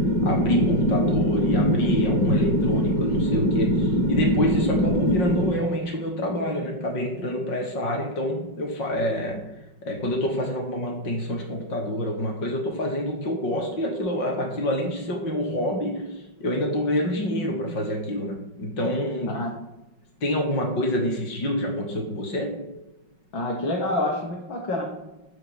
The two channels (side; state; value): right; late; 5.4 ms